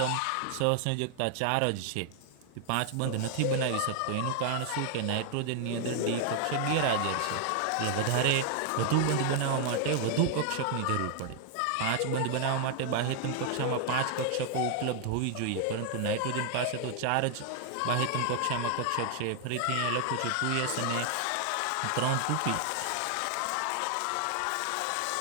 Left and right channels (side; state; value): both; different; correlation 0.00